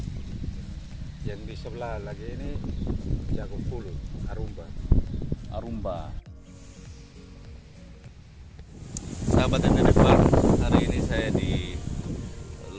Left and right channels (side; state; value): both; identical; correlation 1.00